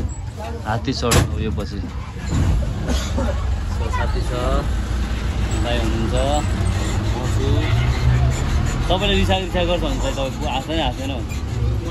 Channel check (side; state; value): both; identical; correlation 1.00